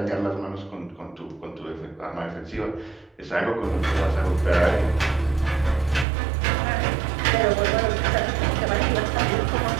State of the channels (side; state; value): left; drops out; at 6.1 s